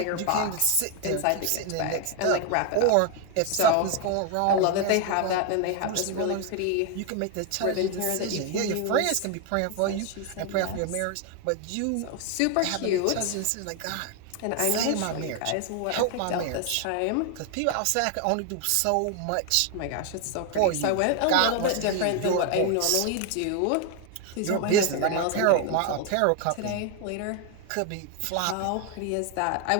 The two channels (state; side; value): different; both; correlation 0.01